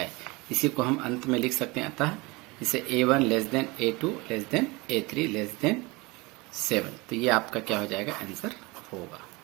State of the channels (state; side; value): quieter; left; 24.5 dB